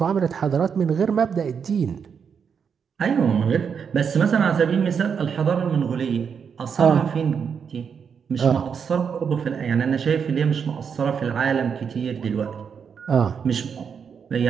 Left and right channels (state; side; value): quieter; left; 6.7 dB